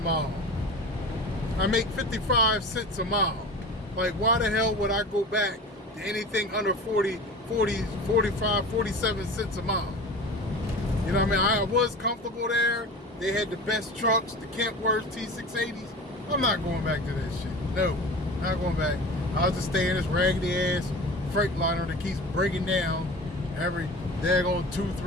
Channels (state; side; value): normal; both; correlation 0.35